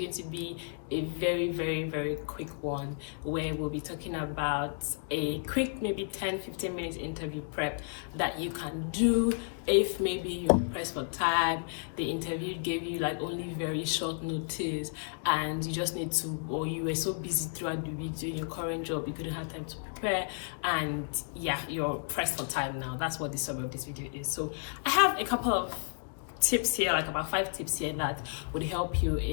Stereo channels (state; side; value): silent; right; 56 dB below the other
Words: to be a very quick one where we'll be talking about a quick maybe 10-15 minutes interview prep that you can do if maybe you're pressed for time, the interview gave you like only very short notice and you just need to, or you were so busy throughout the week doing your current job you couldn't have time to prepare, and yeah, you're pressed for time now. That's what the summary of this video is. So I have a couple of tips here, like about 5 tips here that would help you